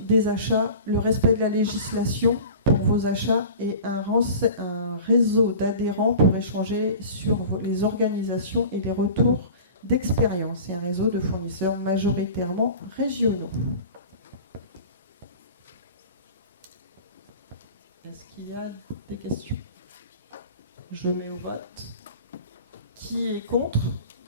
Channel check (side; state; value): both; inverted; correlation -0.38